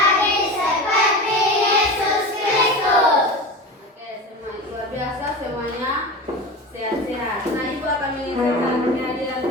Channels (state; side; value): normal; both; correlation 0.29